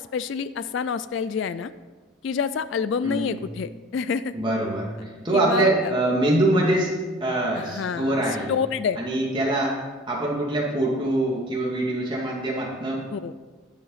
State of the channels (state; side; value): normal; both; correlation 0.42